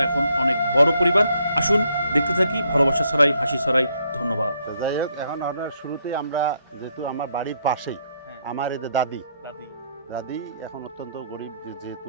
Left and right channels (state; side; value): inverted; both; correlation -0.74